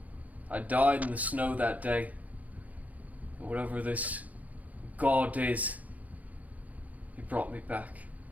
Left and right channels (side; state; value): left; late; 0.075 ms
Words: I died in the snow that day. And whatever this God is, he brought me back.